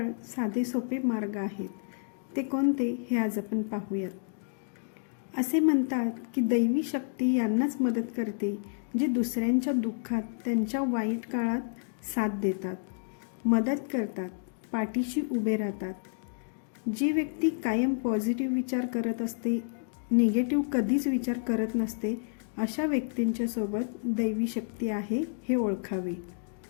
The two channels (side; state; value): right; silent; digital silence